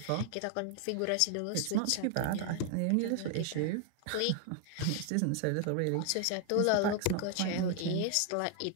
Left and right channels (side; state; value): both; different; correlation 0.00